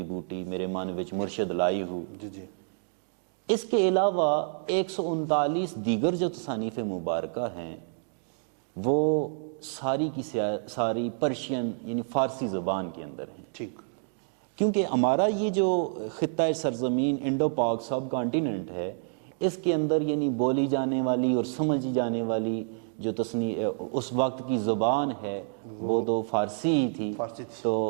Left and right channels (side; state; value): left; silent; digital silence